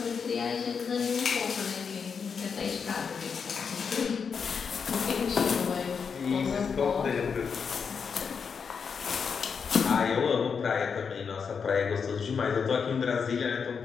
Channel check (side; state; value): right; quieter; 6.1 dB